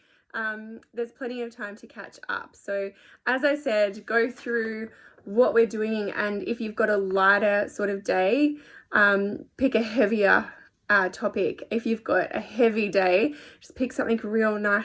There's plenty of time to catch up. So as I said, go through what we're doing, and if you've got a lighter sort of day, pick a heavier topic. If you've got a heavy day, just pick something real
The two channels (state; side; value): identical; both; correlation 1.00